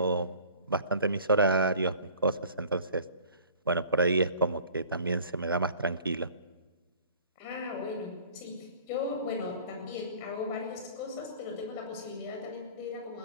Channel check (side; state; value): both; inverted; correlation -0.48